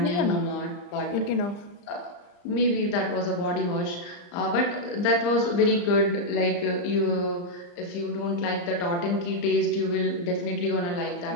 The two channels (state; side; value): late; right; 34 ms